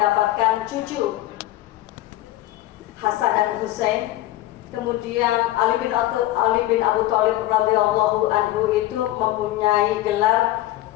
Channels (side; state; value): right; quieter; 15.6 dB